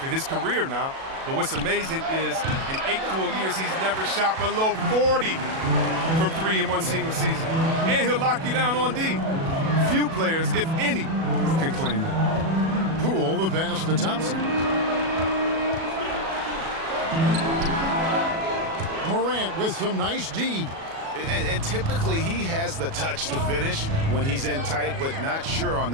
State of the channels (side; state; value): left; late; 37 ms